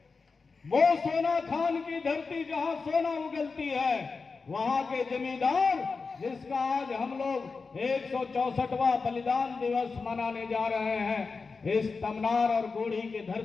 वो सोना खान की धरती जहां सोना उगलती है, वहां के जमींदार, जिसका आज हम लोग 164वां बलिदान दिवस मनाने जा रहे हैं इस तमनार और गोढ़ी की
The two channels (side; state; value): right; quieter; 4.5 dB